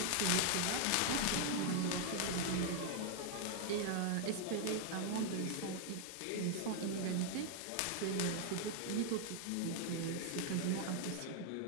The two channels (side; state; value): both; different; correlation 0.00